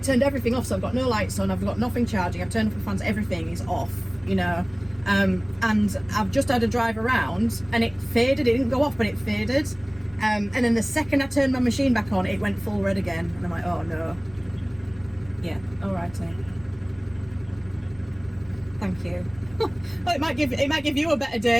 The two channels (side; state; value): left; noise; rumble, 22 dB below the sound